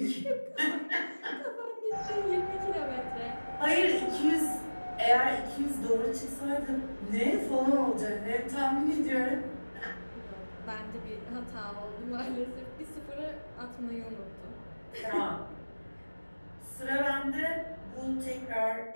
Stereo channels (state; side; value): inverted; both; correlation -1.00